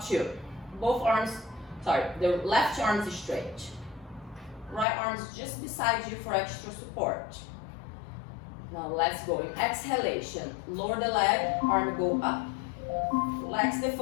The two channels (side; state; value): right; drops out; at 4.9 s